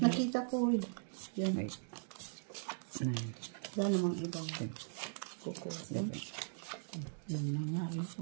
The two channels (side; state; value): left; silent; digital silence